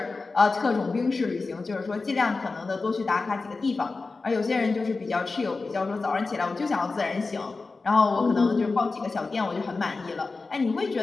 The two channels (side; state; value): right; quieter; 3.9 dB